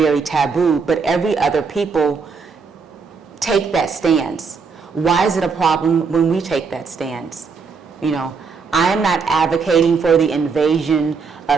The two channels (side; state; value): left; quieter; 5.2 dB